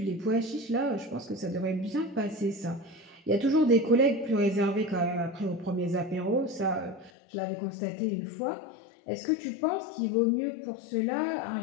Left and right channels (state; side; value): drops out; right; at 7.1 s